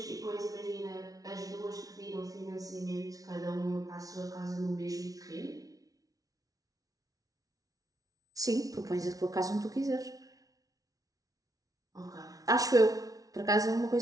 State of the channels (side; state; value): left; late; 0.18 ms